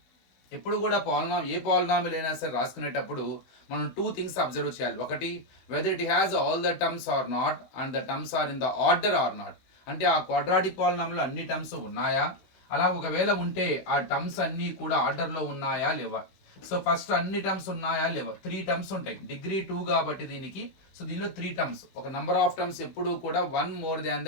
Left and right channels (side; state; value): right; late; 16 ms